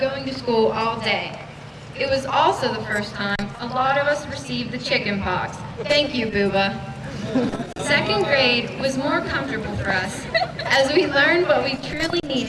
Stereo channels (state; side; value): identical; both; correlation 1.00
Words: to school all day. It was also the first time a lot of us received the chicken pox. Thank you, Booba. Second grade was more comfortable for us as we learned what we truly